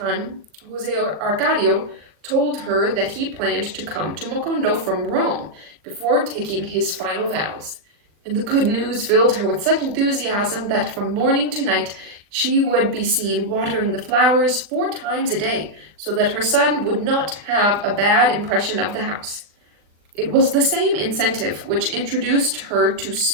Jose Arcadio told her that he planned to come to Mocondo from Rome before taking his final vows, and the good news filled her with such enthusiasm that from morning to night she would be seen watering the flowers 4 times a day, so that her son would not have a bad impression of the house. It was the same incentive which introduced her to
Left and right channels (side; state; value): left; late; 40 ms